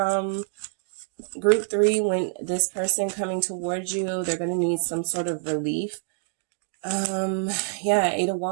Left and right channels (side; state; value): left; silent; digital silence